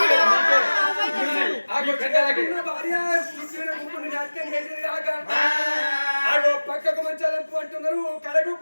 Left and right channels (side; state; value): both; inverted; correlation -1.00